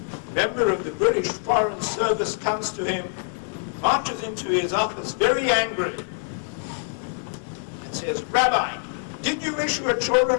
a member of the British Foreign Service comes to him, marches into his office very angry, and says, Rabbi, did you issue a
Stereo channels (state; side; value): silent; right; digital silence